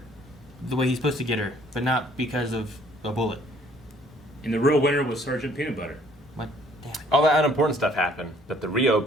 the way he's supposed to get her, but not because of a bullet. And the real winner was Sergeant Peanut Butter. What? Damn it. All that unimportant stuff happened, but the Rio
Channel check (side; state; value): both; normal; correlation 0.60